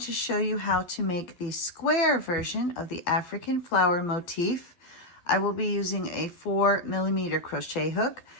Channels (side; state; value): right; late; 12 ms